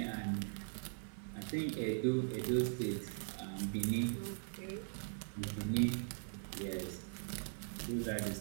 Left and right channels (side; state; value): left; silent; 51 dB below the other